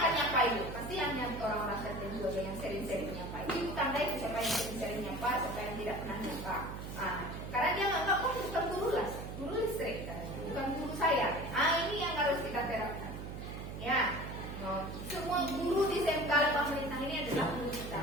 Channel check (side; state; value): right; noise; hum, 8 dB below the sound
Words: akan nyapa ibu. Pasti hanya orang-orang tertentu aja yang sering-sering nyapa. Ibu tandai siapa yang sering-sering nyapa, siapa yang tidak pernah nyapa. Nah, karena dia nggak kok bukan guru lah, guru listrik kan, bukan guru saya. Ini yang harus kita terapkan. Ya, semua guru di SMK pemerintah ini adalah guru kita.